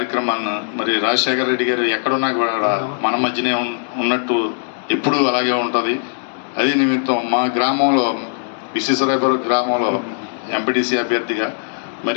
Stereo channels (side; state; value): right; silent; digital silence